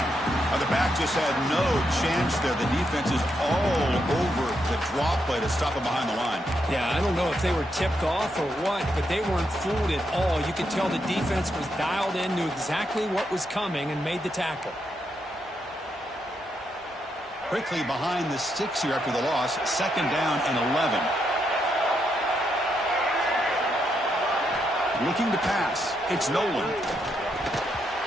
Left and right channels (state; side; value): normal; both; correlation 0.80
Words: Now the back just had no chance there. The defense is all over the draw play to stop him behind the line. Yeah, I don't know if they were tipped off or what, but they weren't fooled at all. You could tell the defense was dialed in, knew exactly what was coming, and made the tackle. Quickly behind the sticks here after the loss. Second down and 11. Looking to pass. It's Nolan.